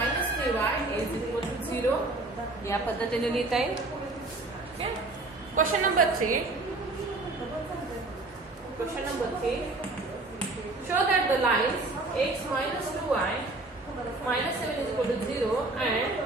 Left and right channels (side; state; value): left; quieter; 3.1 dB